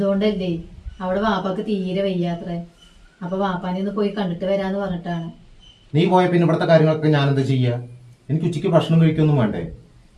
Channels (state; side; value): identical; both; correlation 1.00